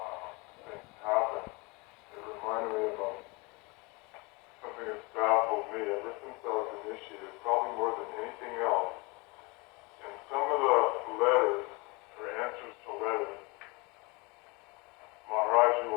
things happen, it reminded me of something that's baffled me ever since I was initiated, probably more than anything else. In some of the letters, or answers to letters, Maharaji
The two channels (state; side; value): quieter; right; 27.1 dB